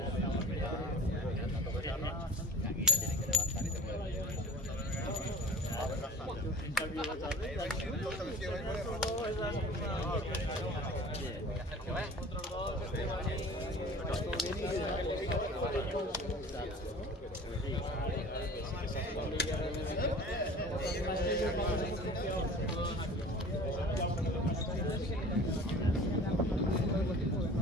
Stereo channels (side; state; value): both; normal; correlation 0.42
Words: aquí ya tienen que levantar y te mueven.